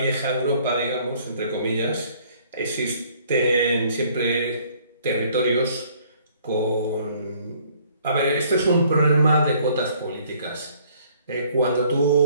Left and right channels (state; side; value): inverted; both; correlation -0.60